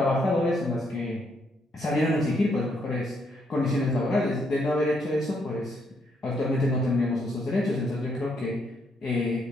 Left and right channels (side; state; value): both; normal; correlation 0.74